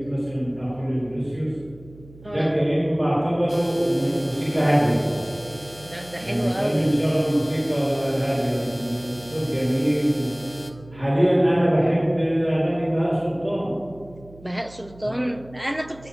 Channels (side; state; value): right; noise; hum, 21 dB below the sound